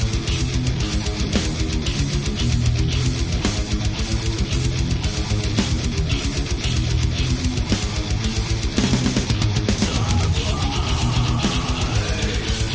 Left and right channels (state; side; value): identical; both; correlation 1.00